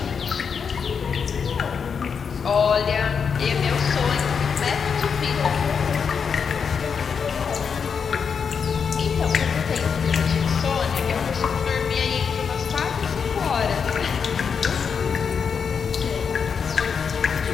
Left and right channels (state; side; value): quieter; right; 6.4 dB